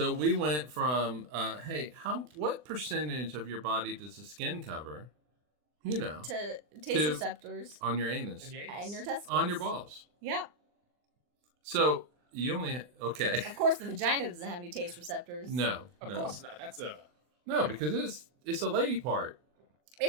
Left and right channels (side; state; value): left; late; 24 ms